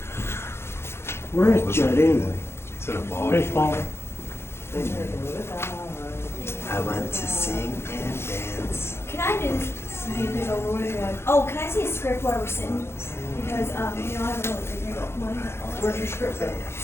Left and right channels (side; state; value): right; late; 0.12 ms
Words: Where is Judd anyway? It's in a ball. Baseball. I want to sing and dance. Can I do this over with? Oh, can I see a script while we're sitting? Because I haven't really figured out mine. Where's your script at?